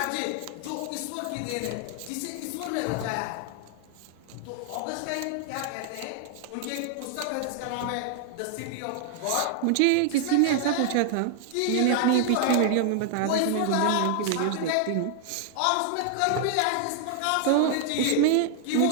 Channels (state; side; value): different; both; correlation 0.00